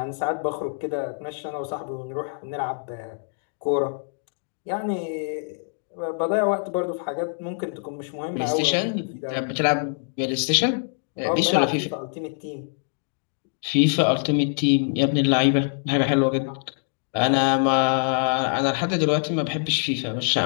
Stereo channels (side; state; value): right; silent; digital silence